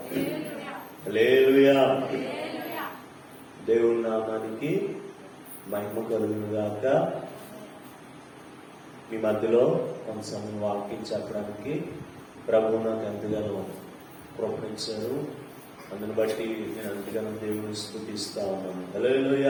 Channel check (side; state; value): both; identical; correlation 1.00